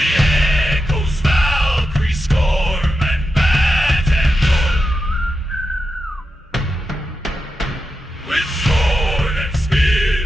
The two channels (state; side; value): normal; both; correlation 0.89